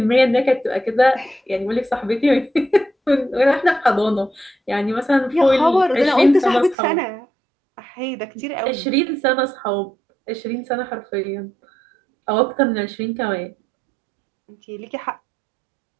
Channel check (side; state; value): left; drops out; at 6.8 s